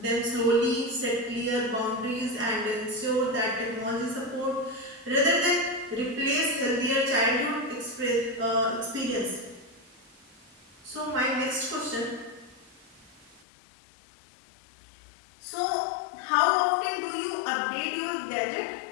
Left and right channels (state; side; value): drops out; right; at 13.4 s